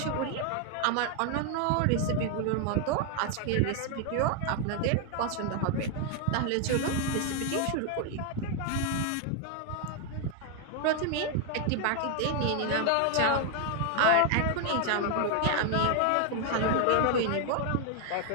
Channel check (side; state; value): both; different; correlation 0.00